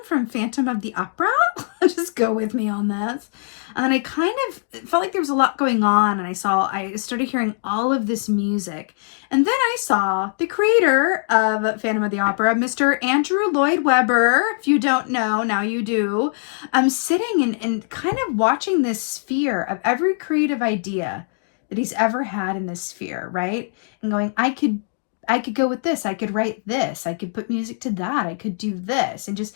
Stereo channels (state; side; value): silent; right; digital silence